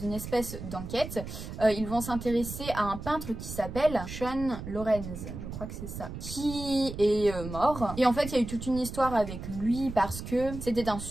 espèce d'enquête, ils vont s'intéresser à un peintre qui s'appelle Sean Lorenz, je crois que c'est ça, qui est mort. Et en fait, il y a eu toute une histoire avec lui parce que c'était un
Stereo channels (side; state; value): right; noise; rumble, 9 dB below the sound